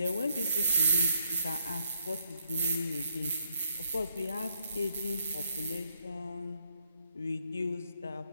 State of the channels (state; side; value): inverted; both; correlation -0.73